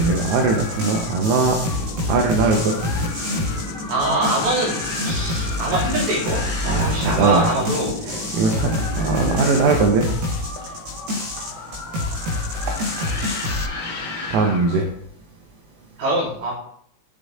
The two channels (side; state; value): left; late; 18 ms